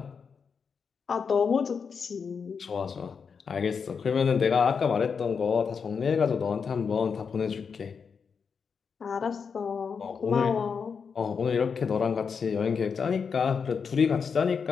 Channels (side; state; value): right; quieter; 6.0 dB